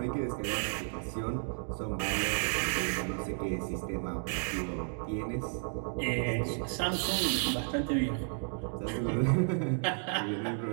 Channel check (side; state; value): left; silent; 56 dB below the other